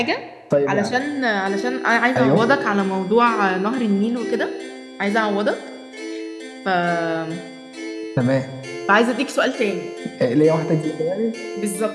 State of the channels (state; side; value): identical; both; correlation 1.00